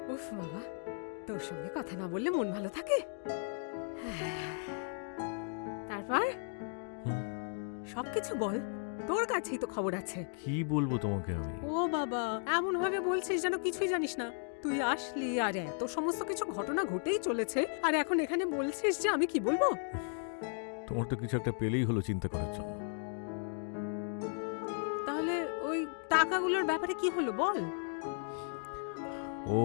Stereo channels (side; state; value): right; silent; 54 dB below the other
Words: উফ বাবা, তোর সঙ্গে কথা না বললে মন ভালো থাকে? তারপর হুম, সবকিছু বল, তোর কাছেই তো খবর আছে। কি বলবো তোমাকে আমি? ও বাবা, এমন ভাবে বলছিস যেন কিছুই জানিস না। তুই আসলি আর এত সমস্ত কিছু ঘটনা ঘটেই চলেছে, আর এখন এখানে বলছিস যে আমি কি বলবো? তোমার তো কিছু একটা পেলেই হলো চিন্তা করার জন্য। তাহলে ওই টাকাগুলোর ব্যাপারে কি হলো বল? ও